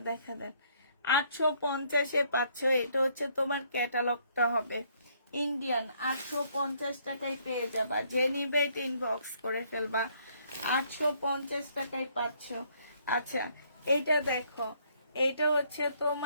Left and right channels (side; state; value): both; inverted; correlation -0.67